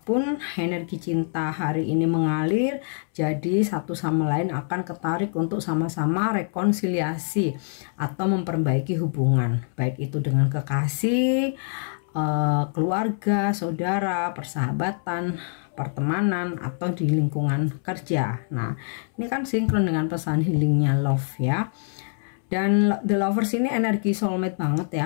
energi cinta hari ini mengalir, jadi satu sama lain akan ketarik untuk sama-sama rekonsiliasi atau memperbaiki hubungan, baik itu dengan kekasih, keluarga, saudara, persahabatan, pertemanan, atau di lingkungan kerja. Nah, ini kan sinkron dengan pesan healingnya love ya. Dan The Lovers ini energi soulmate banget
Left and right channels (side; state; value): right; silent; 62 dB below the other